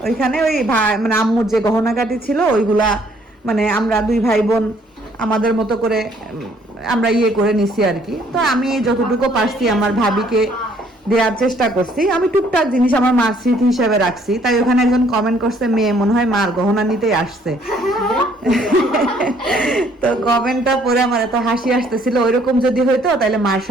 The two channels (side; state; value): both; normal; correlation 0.63